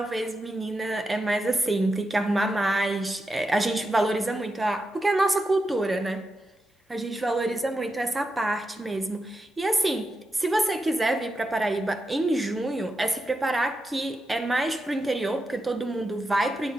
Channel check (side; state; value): both; normal; correlation 0.87